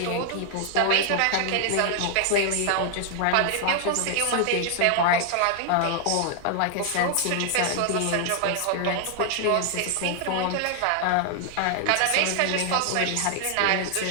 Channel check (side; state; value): both; different; correlation 0.00